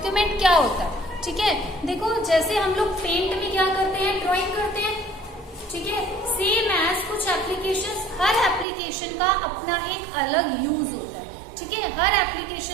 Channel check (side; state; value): left; drops out; at 8.7 s